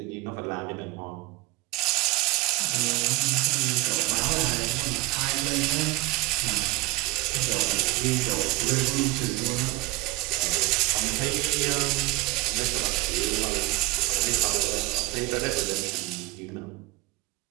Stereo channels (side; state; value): left; quieter; 20.9 dB